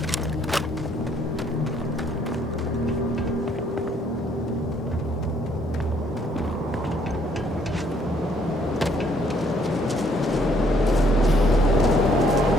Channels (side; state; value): both; normal; correlation 0.66